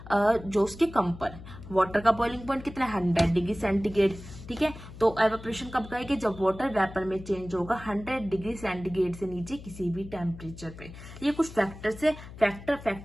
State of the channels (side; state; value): left; noise; hum, 15 dB below the sound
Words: जो उसके कम पर। वाटर का बॉइलिंग पॉइंट कितना है, 100 डिग्री सेंटीग्रेड, ठीक है। तो एवेपोरेशन कब कहेंगे, जब वाटर वेपर में चेंज होगा 100 डिग्री सेंटीग्रेड से नीचे किसी भी टेम्परेचर पे। ये कुछ फैक्टर्स है, फैक्टर